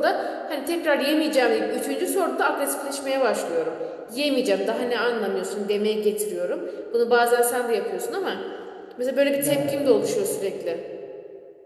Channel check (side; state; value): both; identical; correlation 1.00